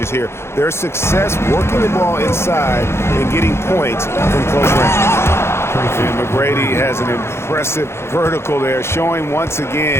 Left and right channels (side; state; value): right; late; 0.12 ms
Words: here. Their success working the ball inside and getting points from close range. And McGrady has an impressive vertical there, showing once